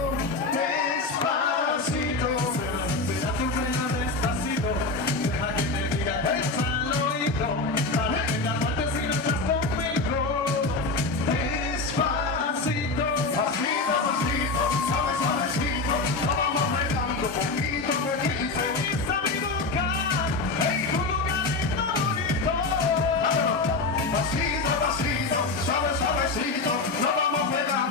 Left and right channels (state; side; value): quieter; right; 3.6 dB